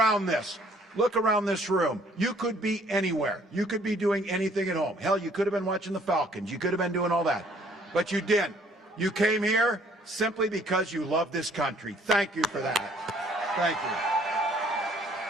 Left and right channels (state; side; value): normal; both; correlation 0.60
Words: this. Look around this room. You could be anywhere. You could be doing anything at home. Hell, you could have been watching the Falcons. You could have been doing all that. But you didn't. You came here simply because you love this country. Thank you for that. Thank you.